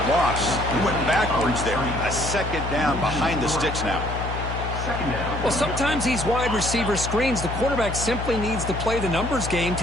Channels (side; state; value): left; noise; hum, 5 dB below the sound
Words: loss. He went backwards there. A second down behind the sticks now. Well, sometimes these wide receiver screens, the quarterback simply needs to play the numbers game